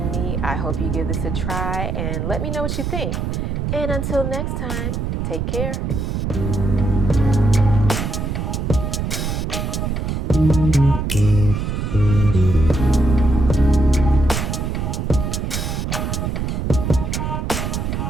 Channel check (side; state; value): right; noise; rumble, 1 dB below the sound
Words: me. I hope you give this a try and let me know what you think. And until next time, take care.